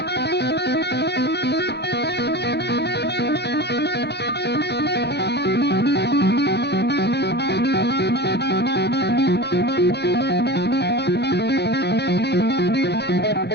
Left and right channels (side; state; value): right; late; 0.49 ms